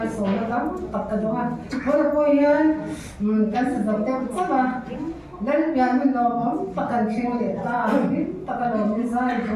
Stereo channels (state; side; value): identical; both; correlation 1.00